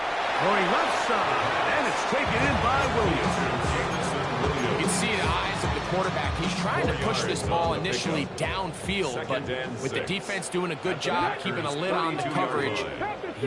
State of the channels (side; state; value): both; identical; correlation 1.00